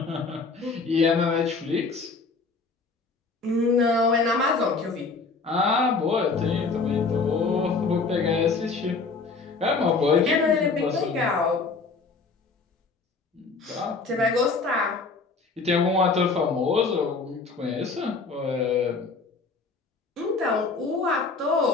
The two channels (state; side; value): quieter; right; 4.3 dB